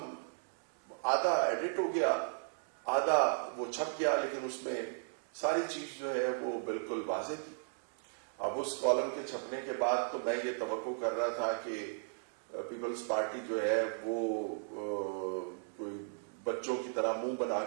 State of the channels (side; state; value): left; silent; digital silence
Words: آدھا ایڈٹ ہو گیا, آدھا وہ چھپ گیا, لیکن اس میں ساری چیز جو ہے وہ بالکل واضح تھی. اب اس کالم کے چھپنے کے بعد تو میں یہ توقع کر رہا تھا کہ پیپلز پارٹی جو ہے وہ کوئی بچوں کی طرح منہ بنا